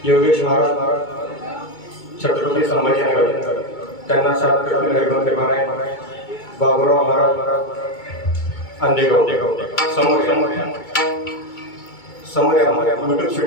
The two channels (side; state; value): right; late; 2.2 ms